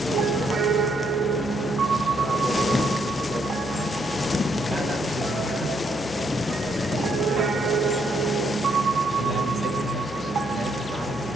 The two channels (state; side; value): normal; both; correlation 0.74